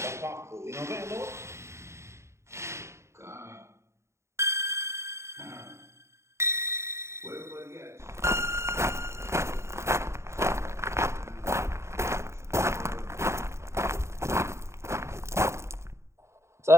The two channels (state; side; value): late; left; 0.13 ms